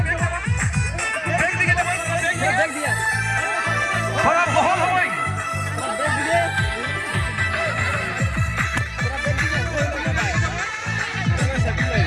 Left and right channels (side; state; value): both; identical; correlation 1.00